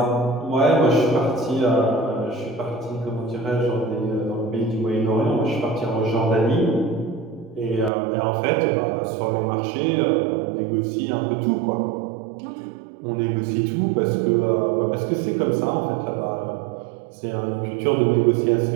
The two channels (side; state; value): left; drops out; at 7.9 s